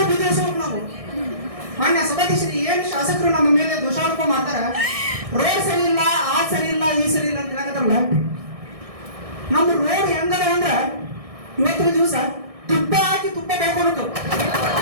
ಬುದ್ಧಿ ಹೊಸಬೇಕು ನಾವು. ಮಾನ್ಯ ಸಭಾಧ್ಯಕ್ಷರು ಏನು ಶಾಸಕರು ನಮ್ಮ ಮೇಲೆ ದೋಷಾರೋಪ ಮಾಡ್ತಾರೆ, ರೋಡ್ ಸರಿ ಇಲ್ಲ ಆ ಸರಿ ಇಲ್ಲ ಈ ಸರಿ ಇಲ್ಲ ಅಂತ ಹೇಳಕತ್ತಾರಲ್ಲ. ನಮ್ಮ ರೋಡ್ ಹೆಂಗದ ಅಂದ್ರೆ ಇವತ್ತಿನ ದಿವಸ ತುಪ್ಪ ಹಾಕಿ ತುಪ್ಪ ಬೆಳ್ಕೊಬೇಕು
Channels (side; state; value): left; late; 1.6 ms